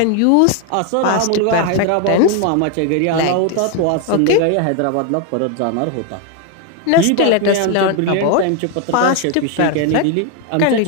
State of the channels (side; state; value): both; different; correlation 0.01